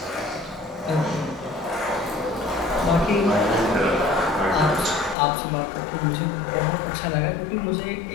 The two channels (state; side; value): drops out; right; at 5.2 s